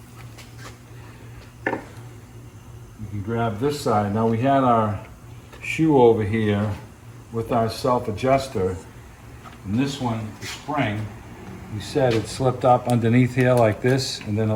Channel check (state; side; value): identical; both; correlation 1.00